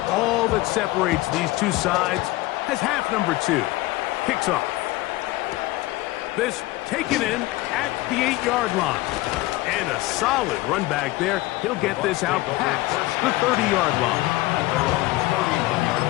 all that separates these two sides, as half number 2 kicks off. This taken in at the 8-yard line. And a solid run back there. He'll get this out past the 30-yard line.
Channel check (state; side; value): quieter; right; 19.0 dB